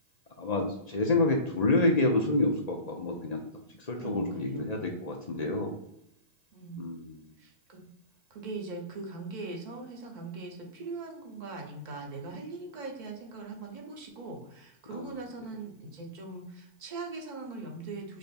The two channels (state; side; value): late; right; 1.9 ms